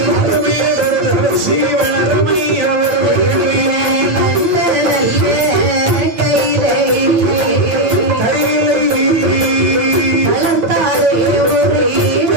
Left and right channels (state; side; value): late; left; 9.0 ms